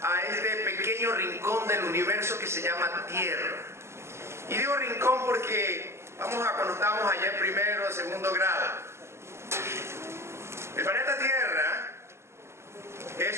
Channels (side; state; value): left; late; 0.13 ms